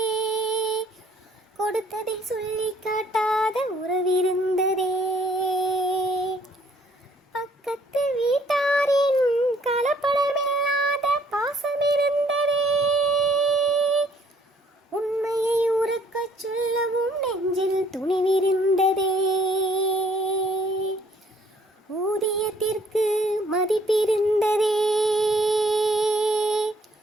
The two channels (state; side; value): normal; both; correlation 0.62